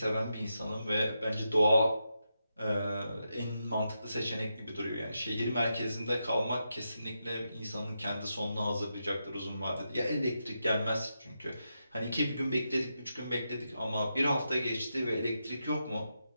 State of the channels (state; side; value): inverted; both; correlation -0.86